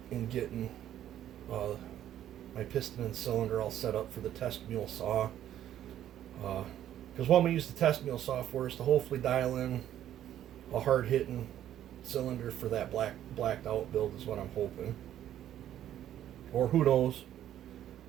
and getting my piston and cylinder all set up for the test mule saw. Because what we use the test mule saw for is to hopefully dial in a hard-hitting cylinder for that blacked out build is what I'm hoping. Or who knows.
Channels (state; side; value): quieter; left; 11.5 dB